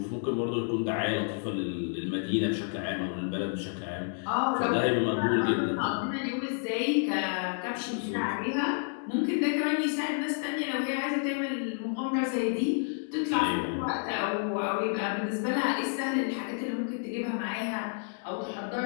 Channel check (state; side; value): silent; right; 58 dB below the other